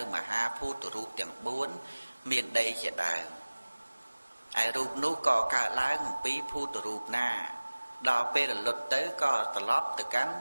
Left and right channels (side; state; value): both; inverted; correlation -1.00